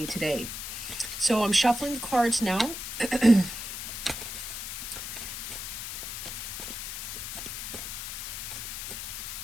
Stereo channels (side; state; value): left; noise; hiss, 6 dB below the sound